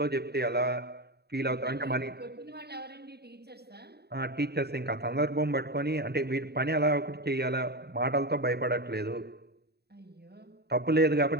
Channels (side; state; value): left; late; 0.47 ms